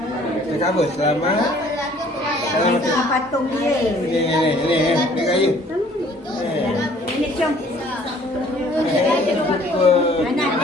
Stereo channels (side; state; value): both; normal; correlation 0.56